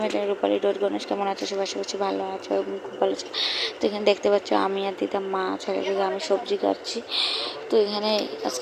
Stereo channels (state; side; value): identical; both; correlation 1.00